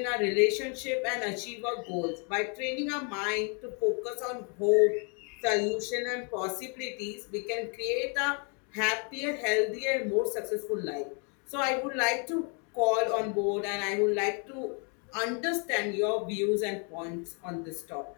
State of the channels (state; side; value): quieter; right; 37.6 dB